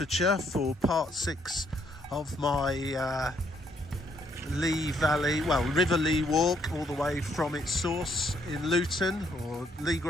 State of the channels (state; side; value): normal; both; correlation 0.70